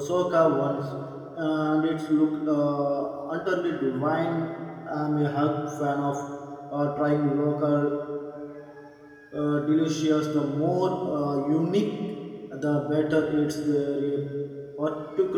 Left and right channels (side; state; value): both; identical; correlation 1.00